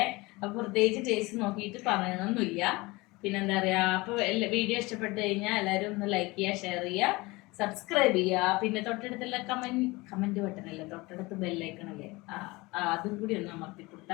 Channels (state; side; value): quieter; right; 22.8 dB